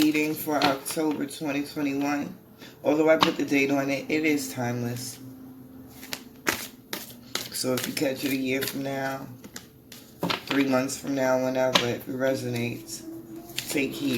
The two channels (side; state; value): both; identical; correlation 1.00